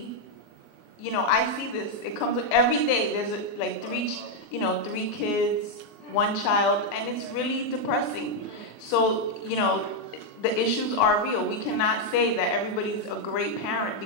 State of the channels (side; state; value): right; late; 24 ms